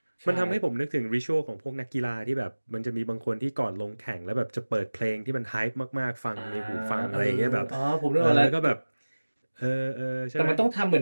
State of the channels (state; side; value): inverted; both; correlation -1.00